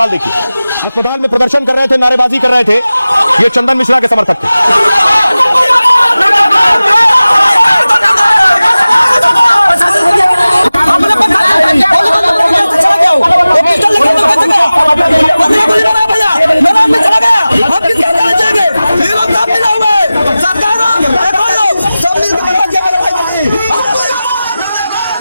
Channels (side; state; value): both; inverted; correlation -0.97